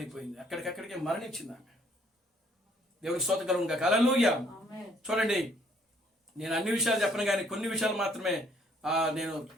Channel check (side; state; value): both; normal; correlation 0.63